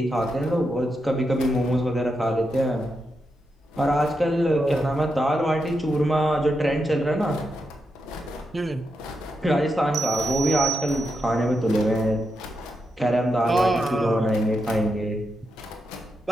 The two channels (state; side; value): normal; both; correlation 0.85